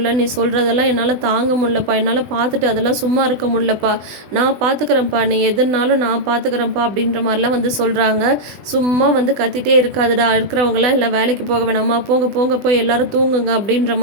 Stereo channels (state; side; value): late; left; 20 ms